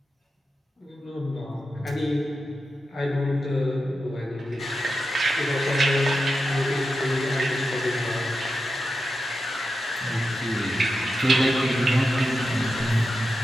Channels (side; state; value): both; normal; correlation 0.89